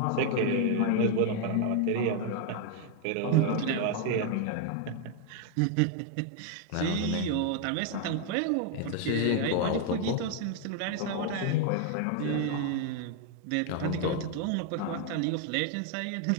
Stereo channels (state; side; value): different; both; correlation 0.00